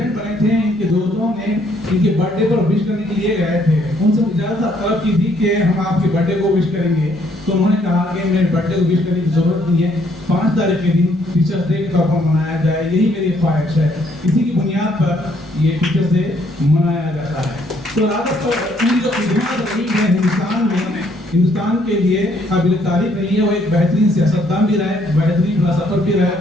बने थे, इनके दोस्तों ने इनके बर्थडे पर विश करने के लिए गए थे, उनसे इजाज़त तलब की थी कि हम आपके बर्थडे को विश करेंगे। तो उन्होंने कहा कि मेरे बर्थडे को विश करने की जरूरत नहीं है, 5 तारीख के दिन टीचर्स डे के तौर पर मनाया जाए, यही मेरी ख्वाहिश है। इसी की बुनियाद पर ये टीचर्स डे मनाया जाता है। तो राजद उनकी जो खिदमत रही है हिंदुस्तान में, हिंदुस्तान के लिए काबिल तारीफ रही है। वो एक बेहतरीन सियासतदान भी रहे, बेहतरीन फिलासफर भी रहे,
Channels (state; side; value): normal; both; correlation 0.67